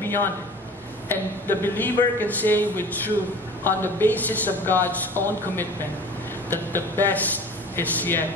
beyond it, and the believer can say with truth on the basis of God's own commitment that the best is yet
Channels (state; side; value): normal; both; correlation 0.41